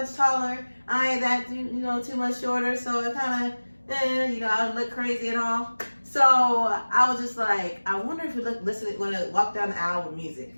taller. I ain't that, too much shorter. So it kind of, I don't look crazy at all. So I was just like, I wonder if we going to walk down the aisle with music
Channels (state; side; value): inverted; both; correlation -1.00